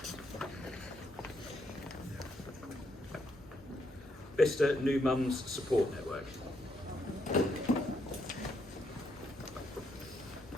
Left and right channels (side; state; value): both; normal; correlation 0.76